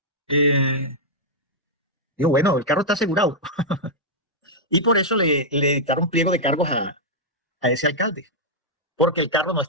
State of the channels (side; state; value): both; normal; correlation -0.07